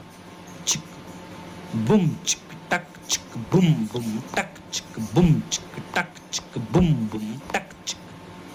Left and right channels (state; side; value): identical; both; correlation 1.00